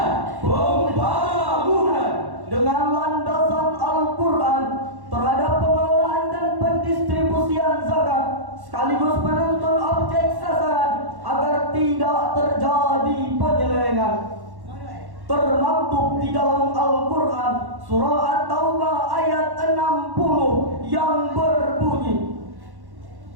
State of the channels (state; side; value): late; left; 1.1 ms